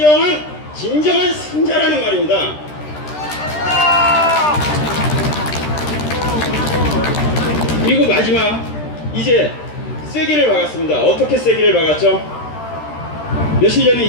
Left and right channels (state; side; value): late; right; 13 ms